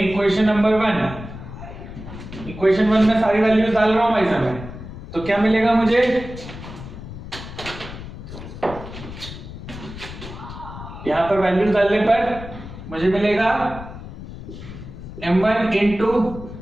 equation number 1, equation 1 में सारी वैल्यूज डाल रहा हूं भाई साहब, तो क्या मिलेगा मुझे, यहां पर वैल्यूज डालने पर मुझे मिलेगा m1 into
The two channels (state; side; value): noise; left; rumble, 12 dB below the sound